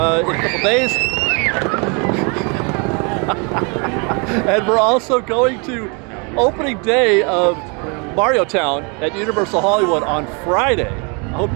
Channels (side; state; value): left; quieter; 33.2 dB